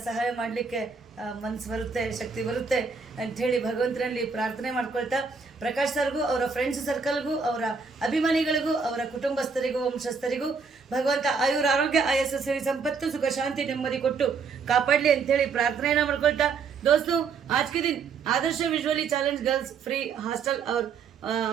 ಸಹಾಯ ಮಾಡಲಿಕ್ಕೆ ಮನಸ್ಸು ಬರುತ್ತೆ, ಶಕ್ತಿ ಬರುತ್ತೆ ಅಂಥೇಳಿ ಭಗವಂತನಲ್ಲಿ ಪ್ರಾರ್ಥನೆ ಮಾಡ್ಕೊಳ್ತಾ, ಪ್ರಕಾಶ್ ಸರ್ಗೂ ಅವರ ಫ್ರೆಂಡ್ಸ್ ಸರ್ಕಲ್ಗೂ ಅವರ ಅಭಿಮಾನಿಗಳಿಗೂ ಅವರ ಕುಟುಂಬಸ್ಥರಿಗೂ ವಂಶಸ್ಥರಿಗೂ ಭಗವಂತ ಆಯುರ ಆರೋಗ್ಯ ಆಯಸ್ಸು ಸಿರಿ ಸಂಪತ್ತು ಸುಖ ಶಾಂತಿ ನೆಮ್ಮದಿ ಕೊಟ್ಟು ಕಾಪಾಡಲಿ ಅಂಥೇಳಿ ಪ್ರಾರ್ಥನೆಯನ್ನು ಮಾಡ್ಕೊಳ್ತಾ, दोस्तों आज के दिन Adarsh visually challenged girls free hostel और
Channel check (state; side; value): quieter; left; 5.2 dB